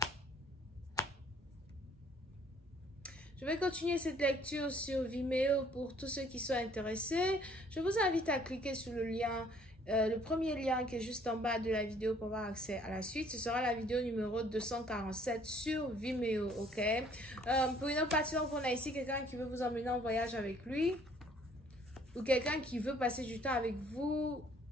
Je vais continuer cette lecture sur Vimeo pour tous ceux qui sont intéressés. Je vous invite à cliquer sur le lien, le premier lien qui est juste en bas de la vidéo pour avoir accès à la suite. Ce sera la vidéo numéro 247 sur Vimeo, ok? Pour une autre partie, on a ici quelqu'un qui veut vous emmener en voyage avec lui ou quelqu'un qui veut passer du temps avec vous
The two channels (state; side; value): normal; both; correlation 0.60